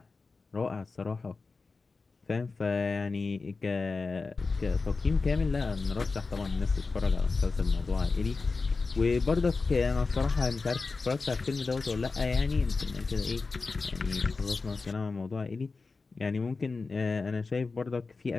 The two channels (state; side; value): quieter; right; 4.1 dB